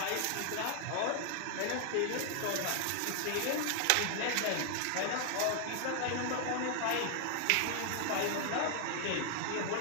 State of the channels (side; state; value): both; different; correlation 0.00